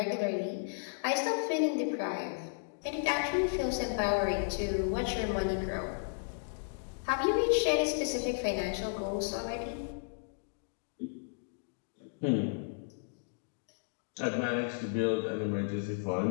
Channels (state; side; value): silent; right; digital silence